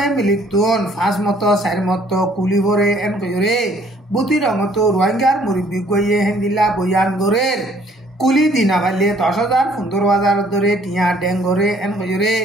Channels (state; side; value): normal; both; correlation 0.60